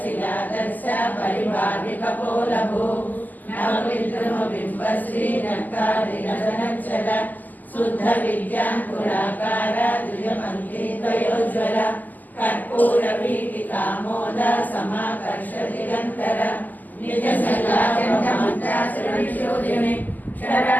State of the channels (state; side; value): late; right; 0.083 ms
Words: परिभाविकपोलभू नवविद्रुमबिम्बश्रीनक्तादिनदनच्छल शुद्ध विद्याङ्कुराकार द्विजपङ्क्तिद्वयोज्ज्वल कर्पूरवीटिकामोद समाकर्ष दिगन्तर निजसल्लाचण्डमन्त्रासुरनिशोधिनि